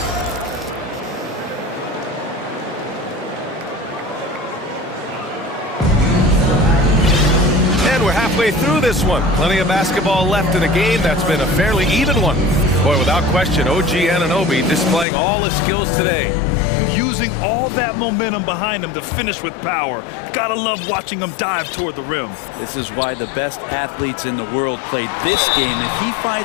Through this one. Plenty of basketball left in a game that's been a fairly even one. Boy, without question, OG Anunoby displaying all his skills today. Using all that momentum behind him to finish with power. Gotta love watching him dive toward the rim. This is why the best athletes in the world play this game. If he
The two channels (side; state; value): right; drops out; at 15.1 s